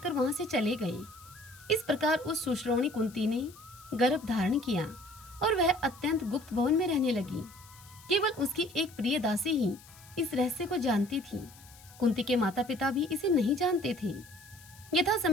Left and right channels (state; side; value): noise; left; hiss, 22 dB below the sound